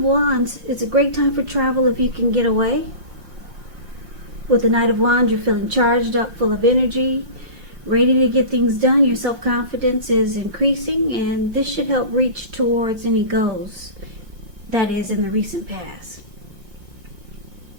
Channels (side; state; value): left; late; 5.6 ms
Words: Wands, it's a great time for travel if you can get away. With the Knight of Wands, you're feeling charged up, full of energy, ready to get things done. Your self-confidence is increasing, and this should help reach towards any goals that is in the recent past.